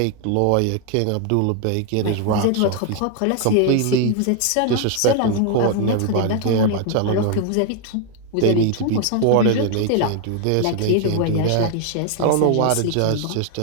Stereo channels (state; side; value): different; both; correlation 0.00